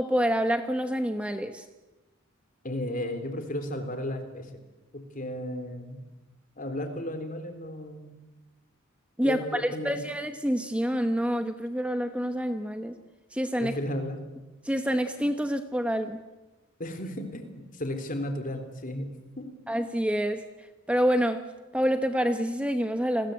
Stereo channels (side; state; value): both; normal; correlation 0.83